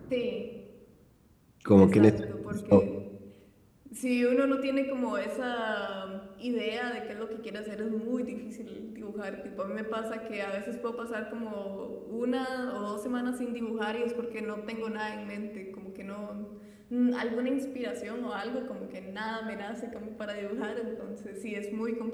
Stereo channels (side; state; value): both; identical; correlation 1.00